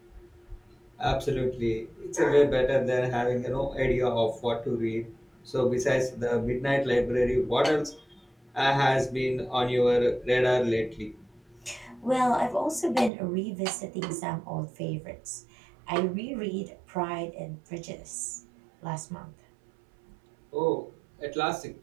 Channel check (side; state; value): left; drops out; at 13.1 s